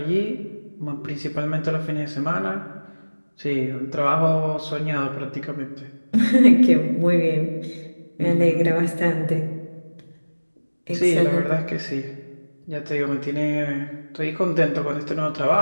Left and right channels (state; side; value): inverted; both; correlation -1.00